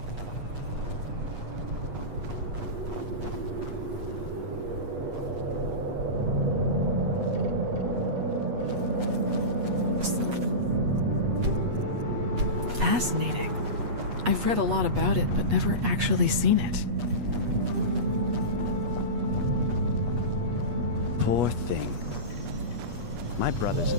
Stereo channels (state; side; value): late; left; 8.3 ms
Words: Fascinating. I've read a lot about it, but never actually seen it. Poor thing. My brothers